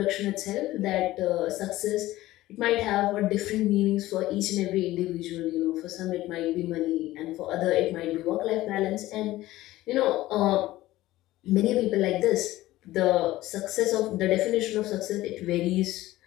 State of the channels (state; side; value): quieter; right; 16.5 dB